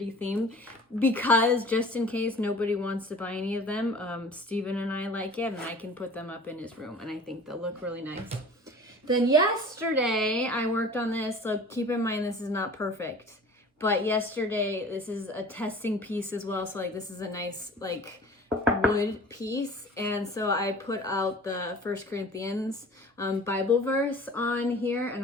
theme because just in case nobody wants to buy any of them, Steven and I like it, and I can put them up in his room, and I think they'll look really nice. Then yesterday I worked on this, so keep in mind this is not perfect. But yesterday, this is a testing piece as well. So like this is a nice like wood piece. And so I put out the 1 Corinthians Bible verse on here. And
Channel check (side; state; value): both; normal; correlation 0.44